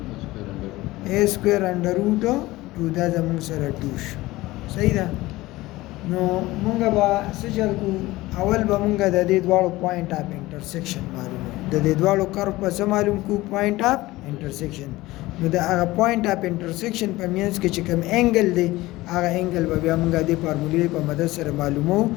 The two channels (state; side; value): quieter; right; 18.7 dB